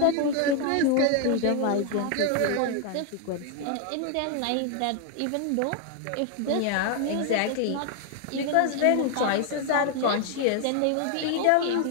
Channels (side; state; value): both; different; correlation 0.00